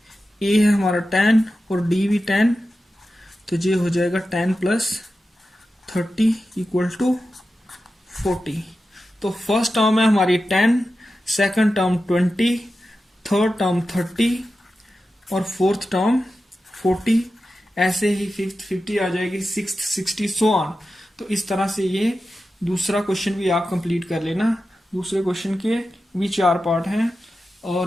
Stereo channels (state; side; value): normal; both; correlation 0.92